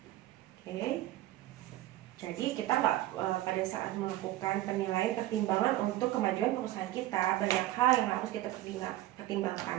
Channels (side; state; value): left; quieter; 15.5 dB